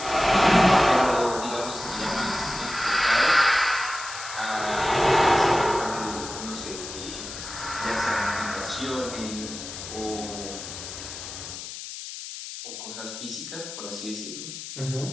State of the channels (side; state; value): left; noise; hiss, 10 dB below the sound